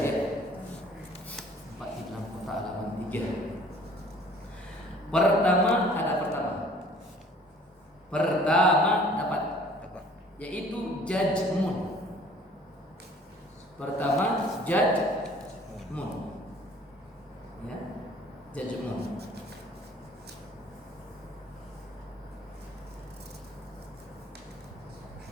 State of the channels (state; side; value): normal; both; correlation 0.53